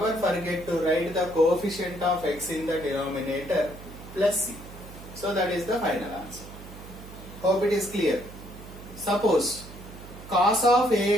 forget to write the coefficient of x in the denominator plus c. So that is the final answer. Hope it is clear. Suppose cos of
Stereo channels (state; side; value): noise; right; hum, 15 dB below the sound